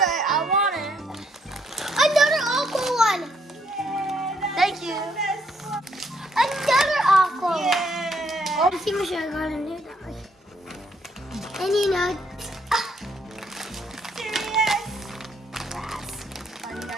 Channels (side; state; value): both; normal; correlation 0.71